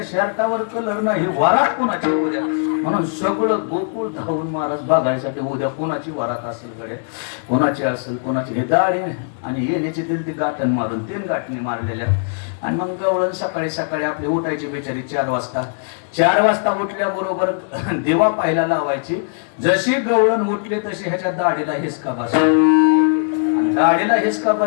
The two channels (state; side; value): silent; right; 66 dB below the other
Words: शर्टावर कलर नाही, वरात कोणाची उद्या म्हणून सगळं गोकुळ धावून महाराज बघायसाठी उद्या कोणाची वरात असेल कडे, कोणाची असेल कोणाची. हे दाढी आणि येण्याची ती गाठण मारून 3 गाठणी मारलेल्या. आणि मग गवळण सकाळी सकाळी आपली उठायची बेचारी 4 वाजता. 4 वाजता उठल्याबरोबर दिवा पाहायला लावायची. जशी गवळण उठली तशी ह्याच्या दाढीला हिसका बसला. दाढीला हिसका